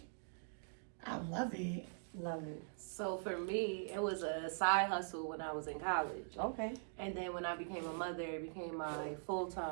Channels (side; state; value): left; silent; digital silence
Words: I love it. Love it. So for me, it was a side hustle when I was in college. Okay. And then when I became a mother, it became my